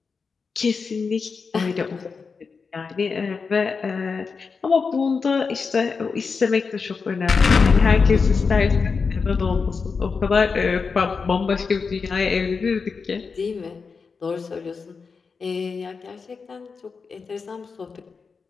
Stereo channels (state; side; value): quieter; right; 5.1 dB